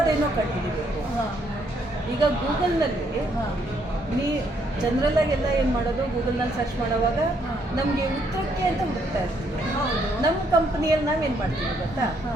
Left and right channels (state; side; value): normal; both; correlation 0.71